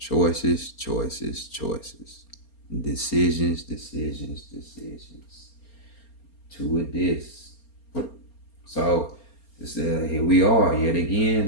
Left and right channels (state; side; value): late; right; 4.3 ms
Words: choices, choices. Decisions, decisions, decisions. two of this. So it's, here we are yet